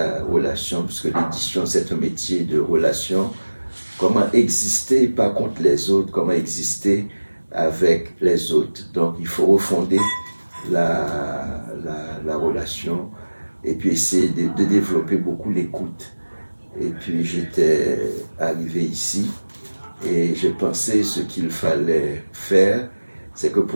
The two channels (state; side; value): inverted; both; correlation -1.00